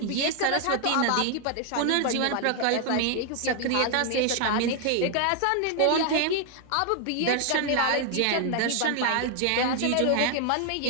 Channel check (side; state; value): both; different; correlation 0.00